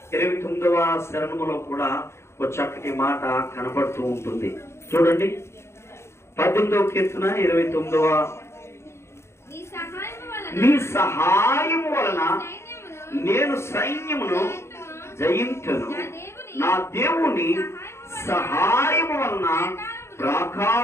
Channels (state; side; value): late; right; 0.13 ms